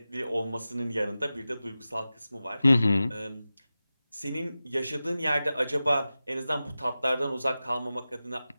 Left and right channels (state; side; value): inverted; both; correlation -0.95